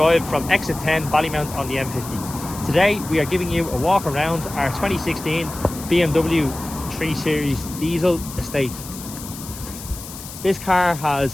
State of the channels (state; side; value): noise; left; hiss, 13 dB below the sound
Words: from exit 10 Ballymount on the M50. Today we are giving you a walk around our 2016 BMW 3 Series diesel estate. This car has